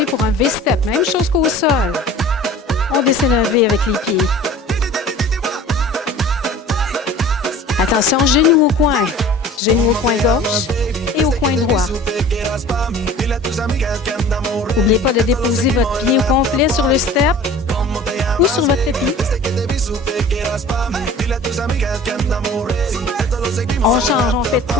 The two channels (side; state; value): both; normal; correlation 0.44